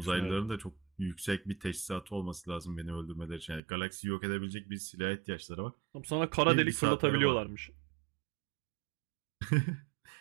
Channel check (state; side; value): drops out; left; at 3.6 s